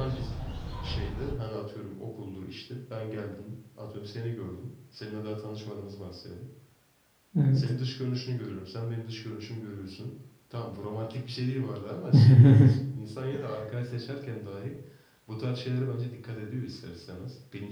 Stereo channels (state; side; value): identical; both; correlation 1.00